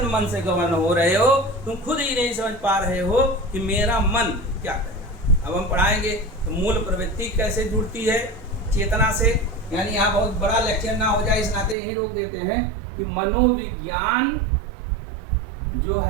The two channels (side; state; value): left; drops out; at 11.8 s